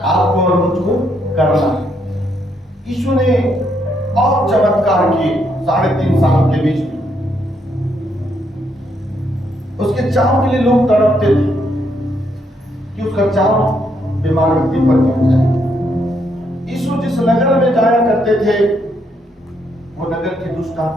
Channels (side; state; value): both; normal; correlation 0.75